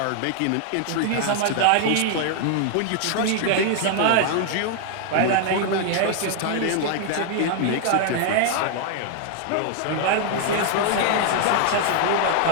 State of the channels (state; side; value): different; both; correlation 0.00